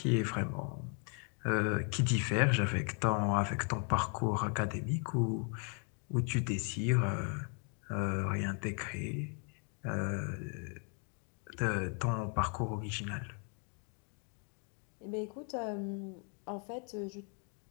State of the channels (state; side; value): quieter; right; 39.8 dB